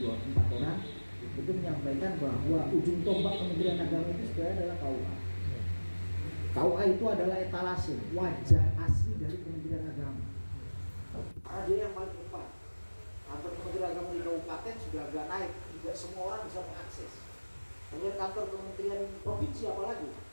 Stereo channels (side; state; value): both; inverted; correlation -1.00